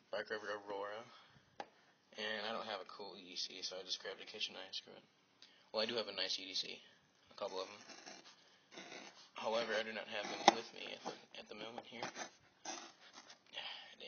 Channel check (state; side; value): identical; both; correlation 1.00